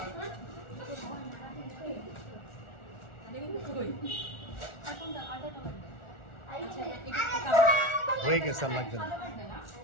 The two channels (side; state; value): right; late; 1.4 ms